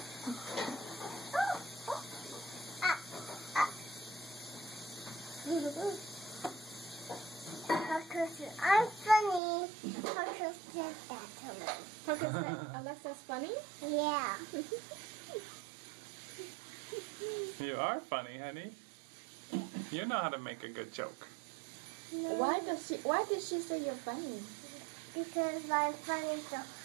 I'm funny. Parker said that to me. Parker said Alexa's funny? Yeah. You are funny, honey. You know how to make a good joke. No, Why did she say you're funny? because I'm funny, so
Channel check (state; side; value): drops out; left; at 9.4 s